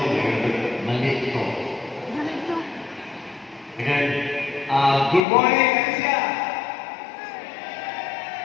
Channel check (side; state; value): right; drops out; at 5.2 s